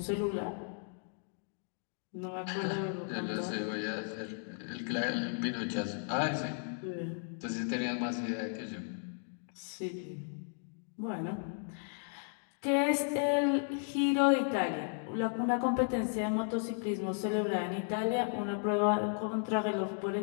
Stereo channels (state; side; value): silent; right; 54 dB below the other